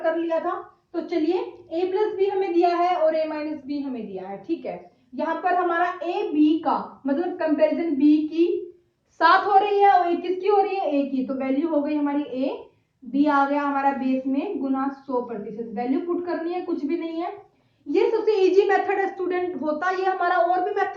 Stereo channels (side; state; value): both; identical; correlation 1.00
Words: लिया था। तो चलिए a प्लस बी हमें दिया है और a माइनस बी हमें दिया है। ठीक है, यहाँ पर हमारा a b का मतलब कंपैरिजन b की 7 हो रही है और किसकी हो रही है, a की। तो वैल्यू हो गई हमारी a, b आ गया हमारा बेस में गुना 100%। वैल्यू पुट करनी है, कुछ भी नहीं है। ये सबसे इजी मेथड है स्टूडेंट। होता ये हमारा और भी